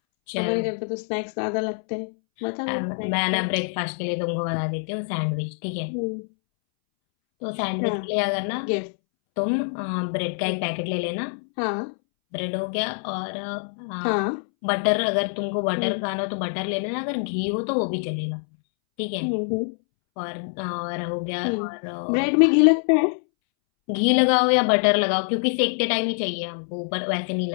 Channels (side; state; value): right; silent; 62 dB below the other